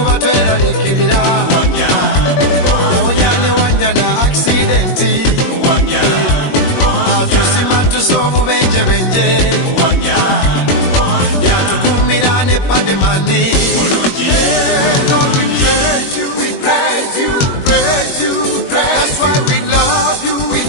tweralikirira yawonya ne wanya na aksidenti atusima tusa obubenjebenje yatukumira ne pademani Lord, we praise you, we praise you, praise you. That's why we love you, we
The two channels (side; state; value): right; late; 21 ms